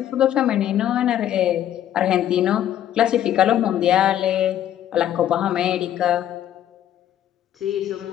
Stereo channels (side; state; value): right; quieter; 11.3 dB